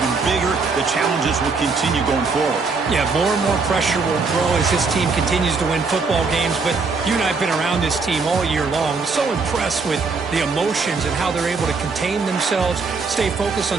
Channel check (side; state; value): left; quieter; 4.4 dB